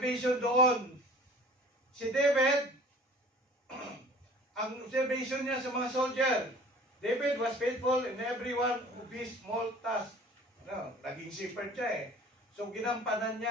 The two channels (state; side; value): normal; both; correlation 0.47